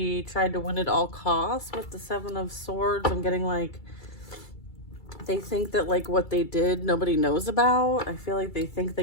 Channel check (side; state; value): right; late; 2.3 ms